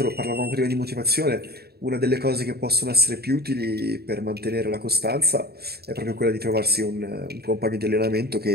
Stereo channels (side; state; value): left; late; 0.46 ms